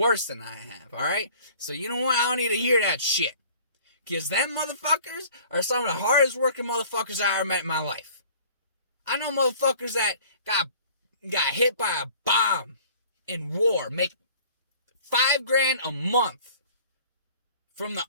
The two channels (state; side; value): inverted; both; correlation -0.51